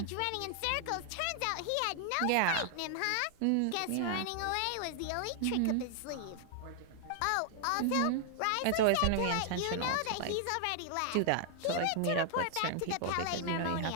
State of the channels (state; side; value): different; both; correlation 0.00